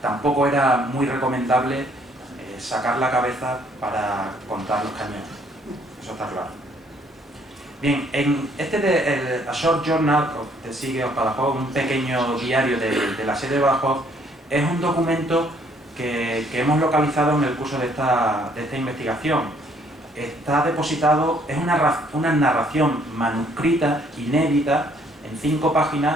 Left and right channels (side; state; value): both; normal; correlation 0.64